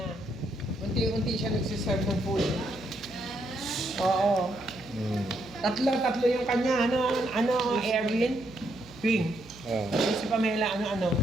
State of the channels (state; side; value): noise; right; hum, 20 dB below the sound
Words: Unti-unti siya nagsiserve ng food. Oo. Tatlo yung kanya. Ano, Erwin? Ping. Si Pamela, ano.